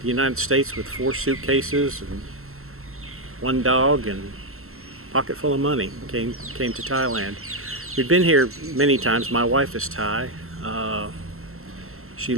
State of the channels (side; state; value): left; late; 0.62 ms